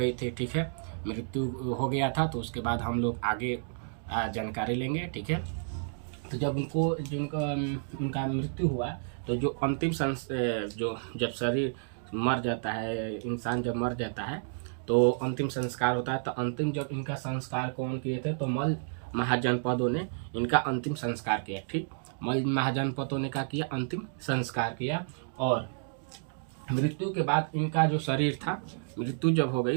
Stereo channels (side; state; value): left; silent; digital silence